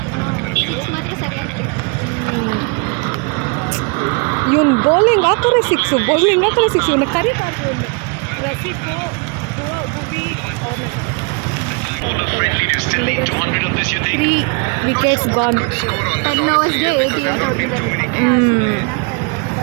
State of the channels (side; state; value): left; quieter; 33.1 dB